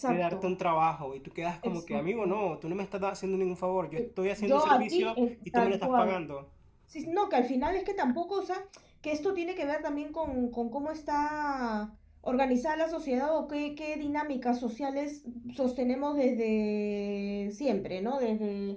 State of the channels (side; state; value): both; identical; correlation 1.00